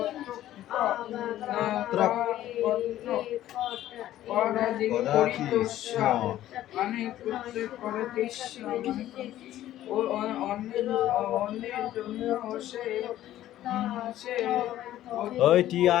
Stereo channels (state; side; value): quieter; right; 13.3 dB